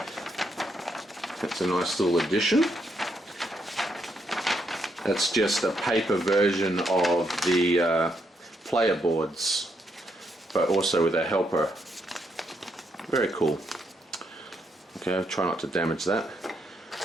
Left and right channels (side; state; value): both; normal; correlation 0.77